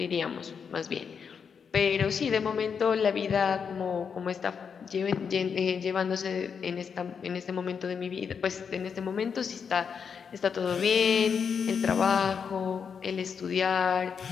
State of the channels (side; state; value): right; quieter; 6.5 dB